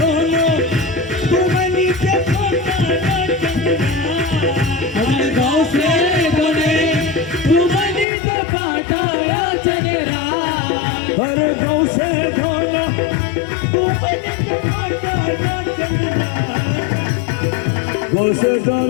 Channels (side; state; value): right; drops out; at 8.1 s